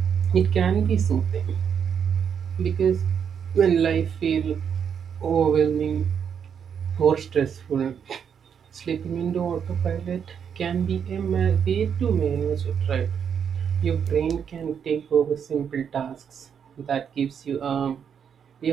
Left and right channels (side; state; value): left; quieter; 7.6 dB